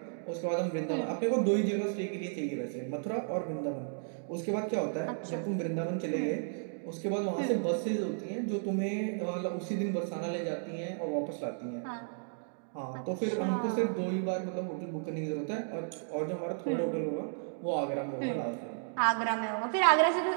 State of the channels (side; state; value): left; silent; digital silence